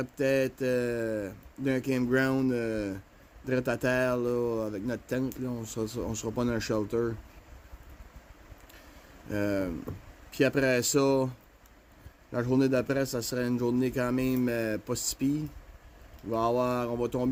peut-être d'un campground direct à terre là, avec notre tente. Là. On sera pas dans un shelter. Puis après ça, la journée d'après, ça serait une journée quand même pas si pire. On va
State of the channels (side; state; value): both; identical; correlation 1.00